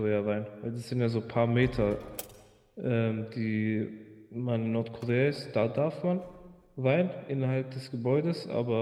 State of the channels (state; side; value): identical; both; correlation 1.00